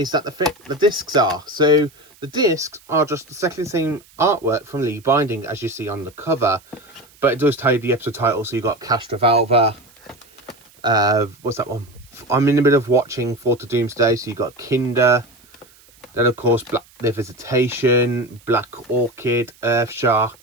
that the discs are. So the discs are just exactly the same artwork from Lee Binding as you see on the cover, but it does tell you the episode title. So you got Castrovalva, what's that one? I'm in the middle of watching Fort of Doomsday, so you got Kinder, then of course The Visitation, Black Orchid, Earth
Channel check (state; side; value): noise; right; hiss, 28 dB below the sound